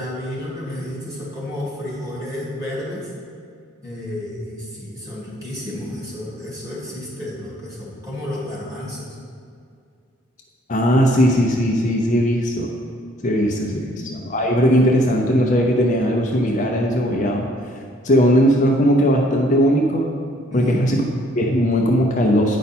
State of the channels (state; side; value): normal; both; correlation 0.62